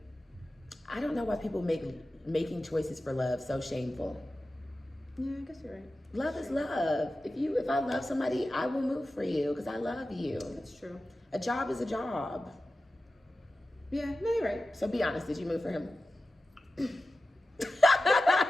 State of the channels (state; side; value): normal; both; correlation 0.94